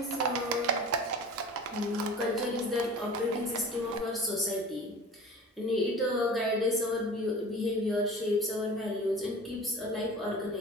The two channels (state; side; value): normal; both; correlation 0.39